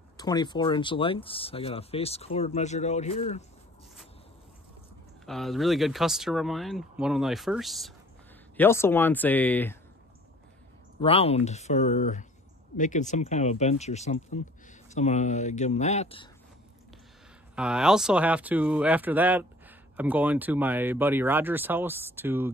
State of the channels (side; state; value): both; normal; correlation 0.50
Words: 24-inch lengths. I got a face cord measured out here. A really good customer of mine, one of my first. He also wants a round for making some kind of a bench or something. So I'm gonna give him that. I also have to, after that, I'm going to my buddy Roger's house to